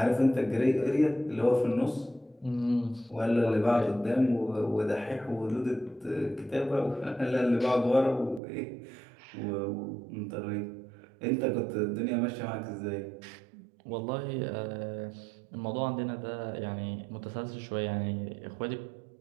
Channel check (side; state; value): left; drops out; at 8.4 s